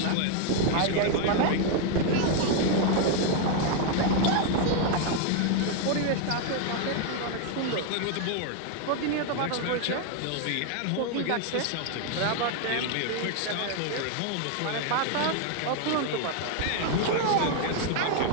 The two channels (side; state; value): both; different; correlation 0.00